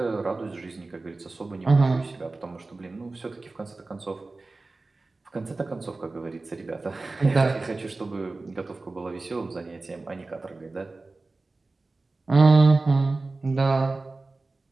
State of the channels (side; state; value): left; quieter; 3.4 dB